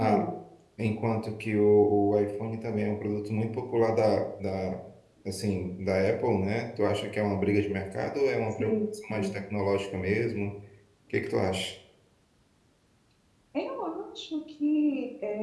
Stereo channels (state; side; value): identical; both; correlation 1.00